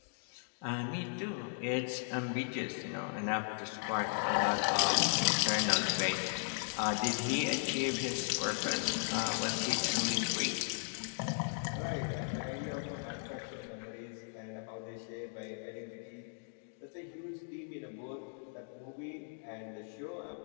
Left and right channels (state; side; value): silent; right; digital silence